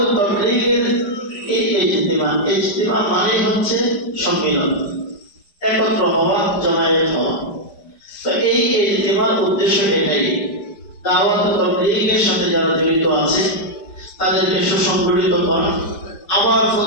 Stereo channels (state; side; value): late; right; 5.0 ms